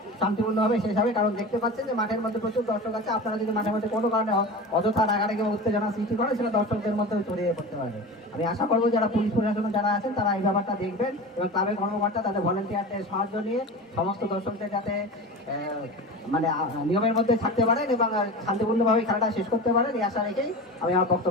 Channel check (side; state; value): both; normal; correlation 0.31